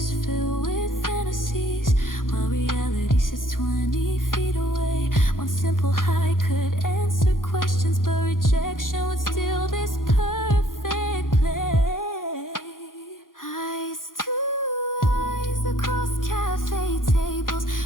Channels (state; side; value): late; right; 0.90 ms